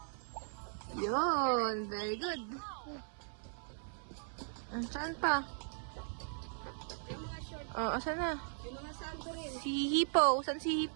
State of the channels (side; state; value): left; silent; 52 dB below the other